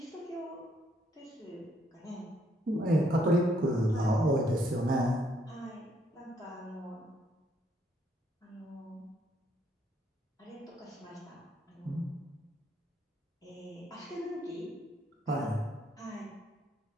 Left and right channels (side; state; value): both; normal; correlation 0.71